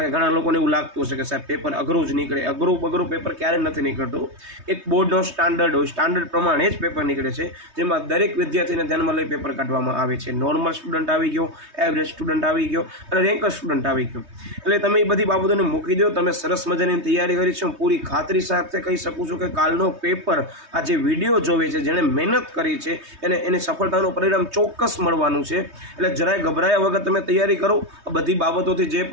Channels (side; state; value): left; late; 3.2 ms